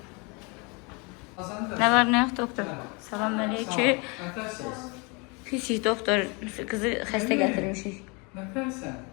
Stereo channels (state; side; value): quieter; right; 30.1 dB